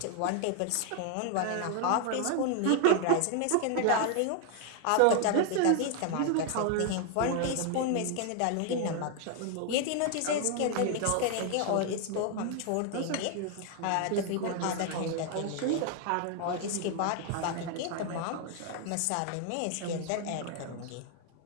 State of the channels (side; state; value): both; different; correlation 0.00